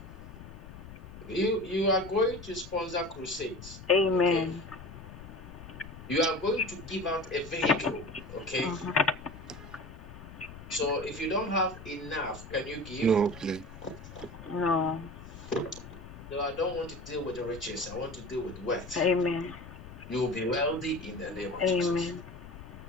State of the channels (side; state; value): left; noise; rumble, 14 dB below the sound